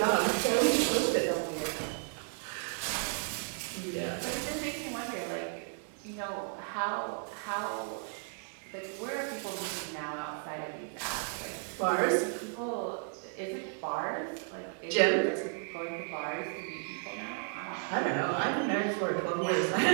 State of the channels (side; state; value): left; silent; 56 dB below the other